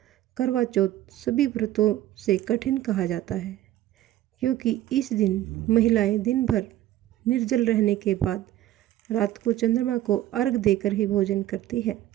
करवा चौथ सभी व्रतों से कठिन कहा जाता है, क्योंकि इस दिन महिलाएं दिन भर निर्जल रहने के बाद रात को चंद्रमा को अर्घ देकर ही भोजन करती है।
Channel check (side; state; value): left; quieter; 14.0 dB